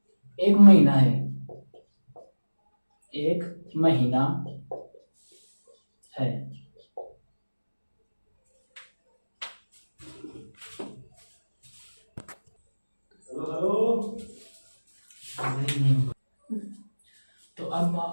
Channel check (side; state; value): both; inverted; correlation -1.00